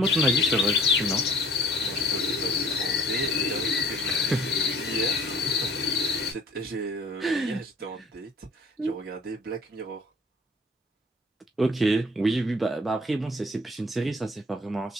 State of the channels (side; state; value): both; normal; correlation 0.52